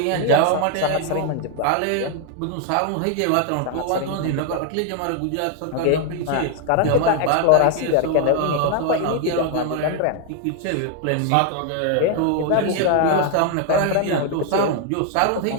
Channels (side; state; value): both; different; correlation 0.00